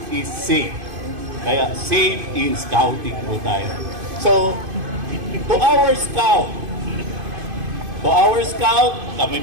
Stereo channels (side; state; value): left; late; 2.5 ms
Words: is safe. Kaya safe in scouting po tayo. So, to our scout, kami